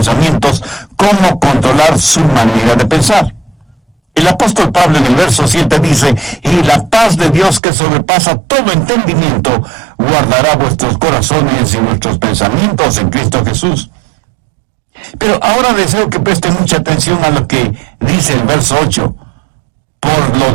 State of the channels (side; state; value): left; drops out; at 7.6 s